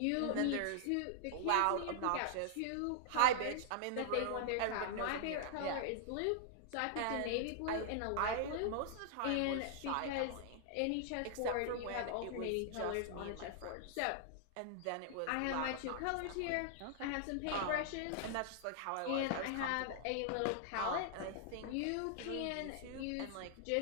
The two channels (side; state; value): both; different; correlation -0.01